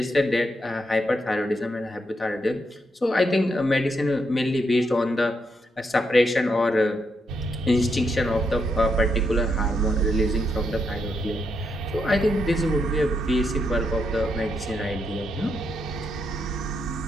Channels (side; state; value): both; normal; correlation 0.79